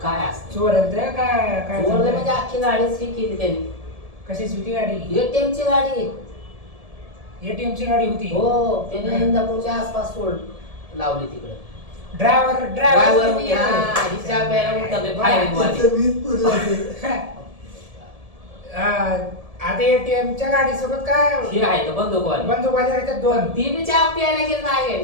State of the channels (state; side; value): late; left; 1.7 ms